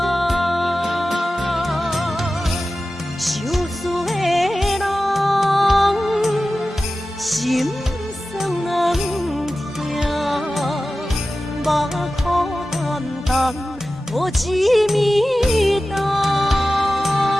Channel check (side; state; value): both; normal; correlation 0.95